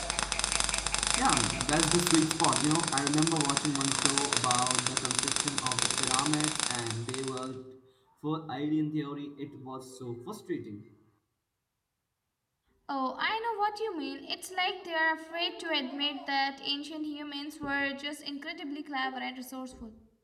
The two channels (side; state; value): both; identical; correlation 1.00